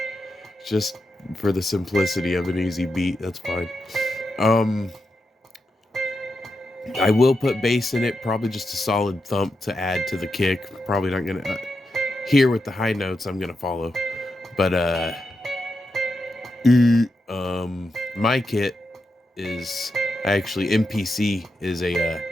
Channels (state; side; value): normal; both; correlation 0.86